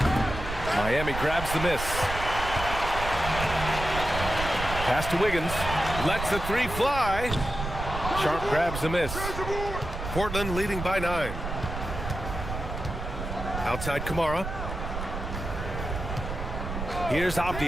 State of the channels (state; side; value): noise; right; rumble, 6 dB below the sound